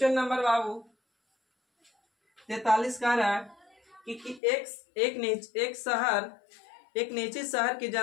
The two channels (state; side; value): drops out; right; at 4.4 s